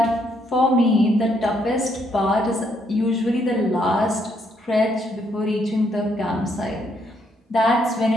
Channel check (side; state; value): both; normal; correlation 0.73